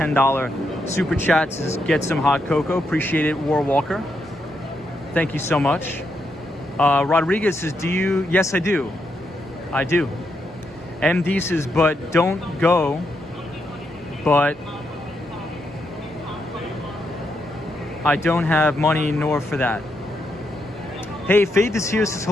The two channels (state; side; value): normal; both; correlation 0.81